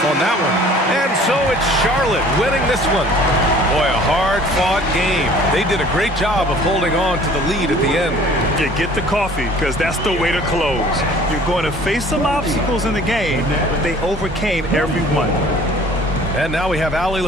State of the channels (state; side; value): normal; both; correlation 0.50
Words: on that one. And so it's Charlotte winning this one. Boy, a hard-fought game. They did a great job of holding on to the lead at the end. Yeah, get the coffee, because that's the way to close. You're going to face some obstacles in the game, but they overcame every one. And now we have Allie